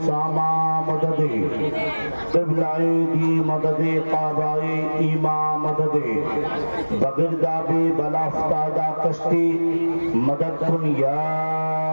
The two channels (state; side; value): inverted; both; correlation -1.00